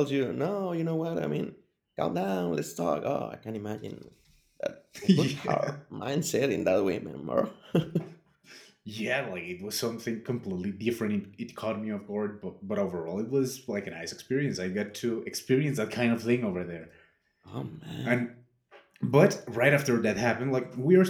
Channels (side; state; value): both; identical; correlation 1.00